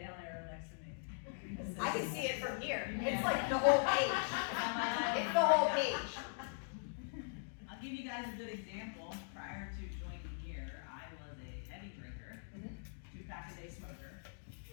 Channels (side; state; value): right; silent; digital silence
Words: arrow next to me. I can see it from here. It's like the whole page. It's the whole page. I'll give you guys a good example. Prior to joining here, I was a heavy drinker, 2-pack-a-day smoker,